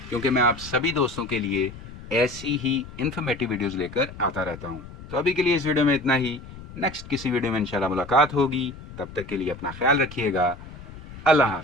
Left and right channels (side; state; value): left; noise; rumble, 15 dB below the sound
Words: क्योंकि मैं आप सभी दोस्तों के लिए ऐसी ही इन्फॉर्मेटिव वीडियोज़ लेकर आता रहता हूँ। तो अभी के लिए इस वीडियो में इतना ही। नेक्स्ट किसी वीडियो में इंशाल्लाह मुलाकात होगी। तब तक के लिए अपना ख्याल रखिएगा। अल्लाह